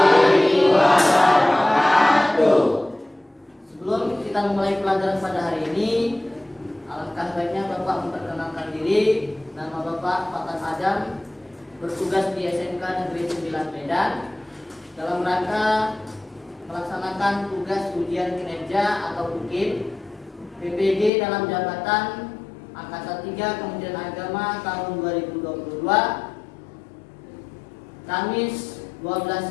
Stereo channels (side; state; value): right; drops out; at 21.1 s